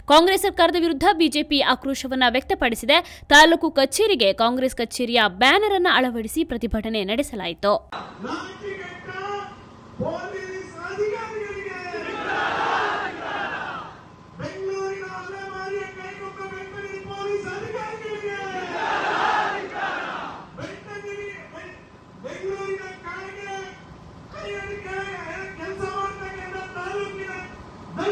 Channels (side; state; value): both; identical; correlation 1.00